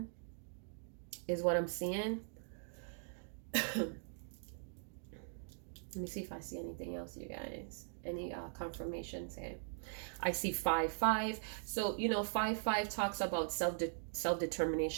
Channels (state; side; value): silent; left; digital silence